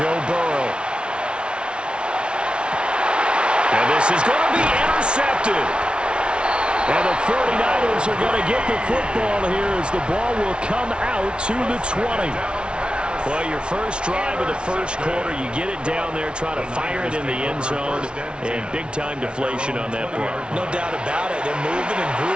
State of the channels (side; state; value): left; late; 0.057 ms